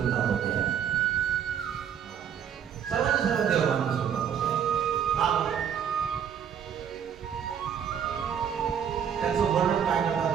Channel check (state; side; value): quieter; left; 8.3 dB